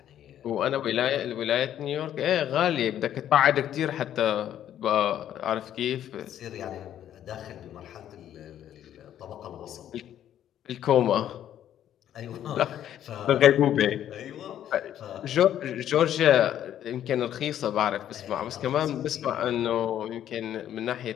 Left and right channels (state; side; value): quieter; right; 10.9 dB